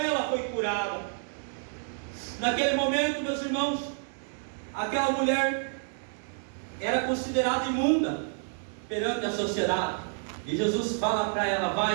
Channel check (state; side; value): silent; left; 58 dB below the other